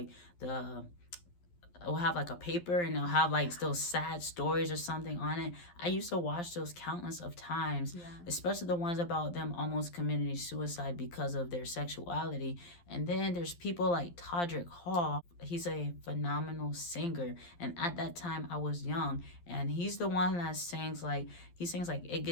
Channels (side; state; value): right; late; 11 ms